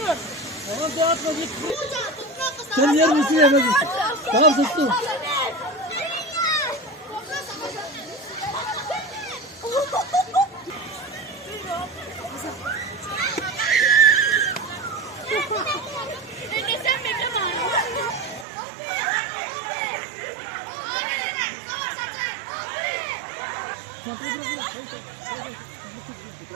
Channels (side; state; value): left; drops out; at 18.4 s